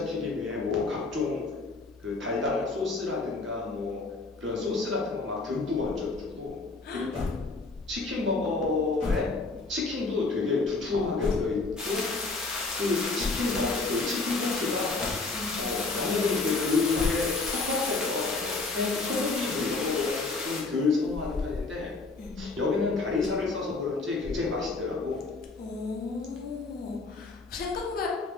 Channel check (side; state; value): right; quieter; 3.6 dB